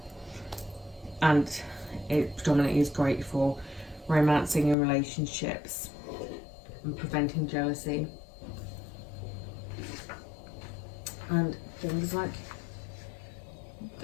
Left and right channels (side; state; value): right; drops out; at 4.8 s